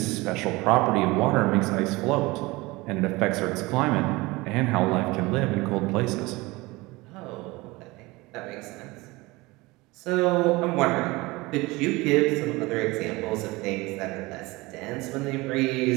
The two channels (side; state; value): left; quieter; 22.2 dB